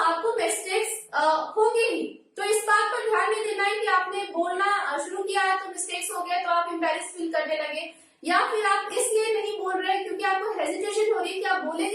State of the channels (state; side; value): identical; both; correlation 1.00